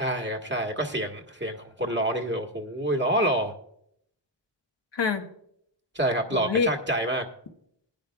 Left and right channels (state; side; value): normal; both; correlation 0.06